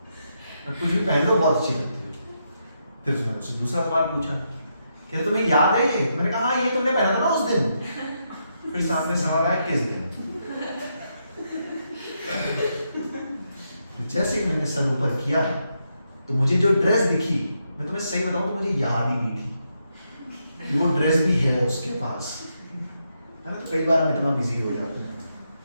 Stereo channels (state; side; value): inverted; both; correlation -0.81